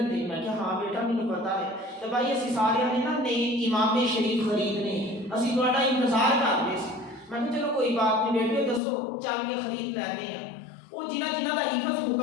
ہے؟ میں کہ ہاں بیٹا مجھے پتا ہے۔ تو بھائی اسی سارے نے نا نئے امام شریف خریدنے، اسی تہاڈا انتظار کر رہے سی۔ میں کہ چلو کوئی بات نہیں بیٹے دسو چل کے خرید لینے ہیں۔ وہ جنہ دا حفظ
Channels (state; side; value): drops out; right; at 8.8 s